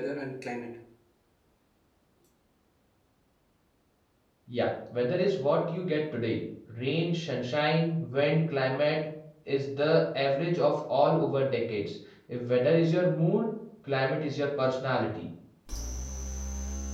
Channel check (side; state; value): both; identical; correlation 1.00